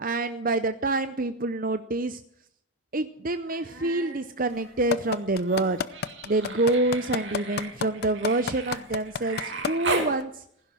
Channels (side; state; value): both; normal; correlation 0.08